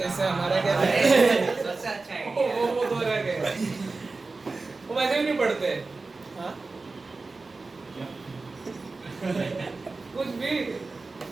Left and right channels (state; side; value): quieter; left; 3.8 dB